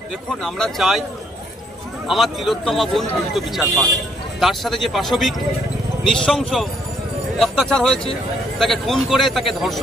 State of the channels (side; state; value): both; normal; correlation 0.69